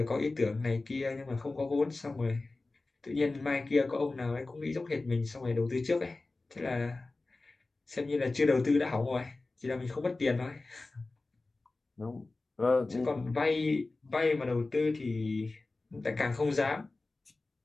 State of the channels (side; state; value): right; quieter; 3.3 dB